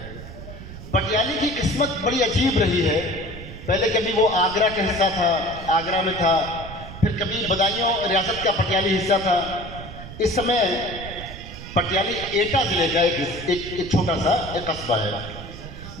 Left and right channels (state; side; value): noise; right; rumble, 12 dB below the sound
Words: पटियाली की किस्मत बड़ी अजीब रही है। पहले कभी वो आगरा का हिस्सा था, आगरा में था, फिर कभी बदायूं रियासत का पटियाली हिस्सा था। इस समय पटियाली एटा जिले का एक छोटा सा एक कस्बा है,